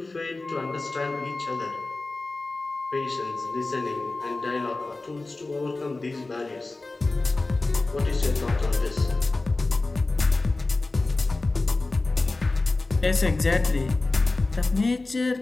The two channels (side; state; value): right; quieter; 3.3 dB